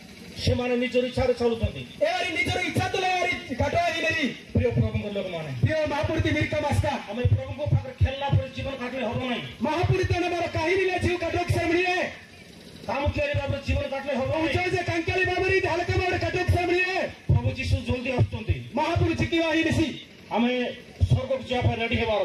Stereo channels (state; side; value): identical; both; correlation 1.00